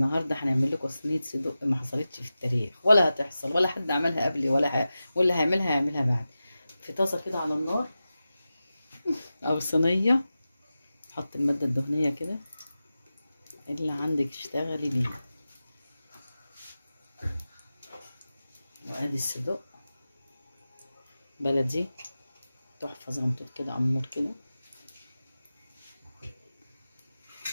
هنعمل لكم صينيه صدق ما حصلتش في التاريخ، ولا هتحصل، ولا حد عملها قبلي واللي هيعملها بعد. في طاسه كده على النار او صينيه، حط الماده الدهنيه كده اللي عندك اشتغلي بيه، وادي الصدق بلدي تحفه زنطوط كده امور كده.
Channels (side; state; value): both; inverted; correlation -0.94